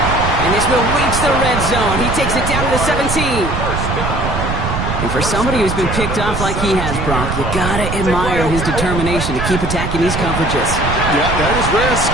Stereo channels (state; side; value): noise; right; rumble, 3 dB below the sound